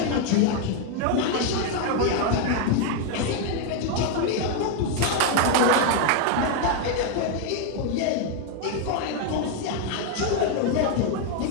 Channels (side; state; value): both; different; correlation 0.01